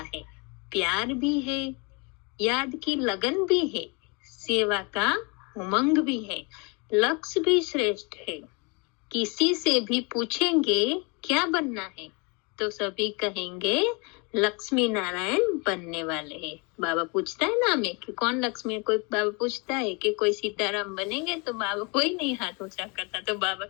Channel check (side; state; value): right; quieter; 31.4 dB